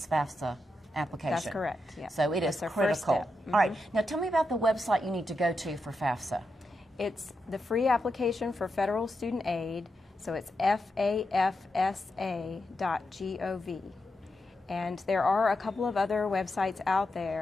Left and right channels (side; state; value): both; normal; correlation 0.86